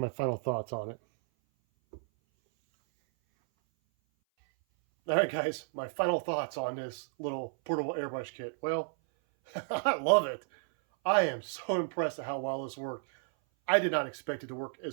final thoughts on it. All right, guys, my final thoughts on this little portable airbrush kit. Well, I love it. I am so impressed at how well this worked. I did not expect it to work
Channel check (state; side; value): silent; left; 56 dB below the other